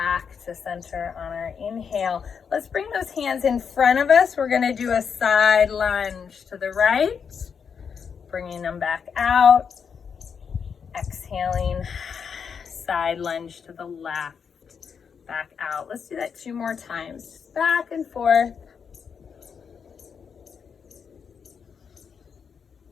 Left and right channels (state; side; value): quieter; right; 6.6 dB